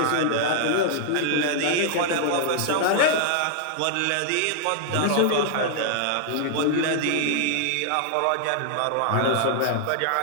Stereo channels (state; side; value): different; both; correlation -0.01